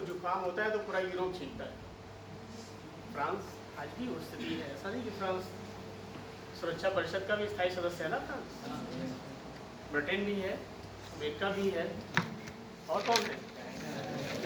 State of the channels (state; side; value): identical; both; correlation 1.00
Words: जुकाम होता है तो पूरा यूरोप छीनता है। फ्रांस आज भी वो स्थिति है, ऐसा नहीं कि फ्रांस सुरक्षा परिषद का भी स्थायी सदस्य है ना फ्रांस। ब्रिटेन भी है, अमेरिका भी है, और कौन है?